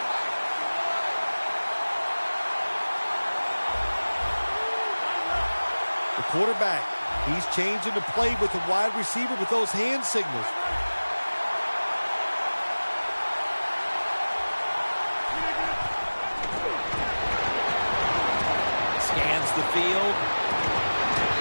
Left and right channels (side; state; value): both; inverted; correlation -1.00